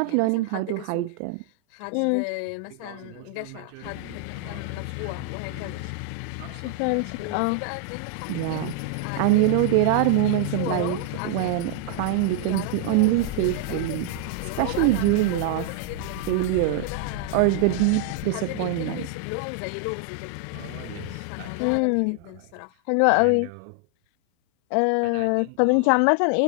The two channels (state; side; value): different; both; correlation 0.00